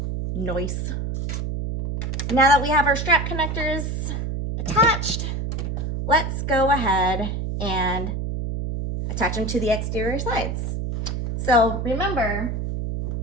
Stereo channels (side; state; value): right; noise; hum, 3 dB below the sound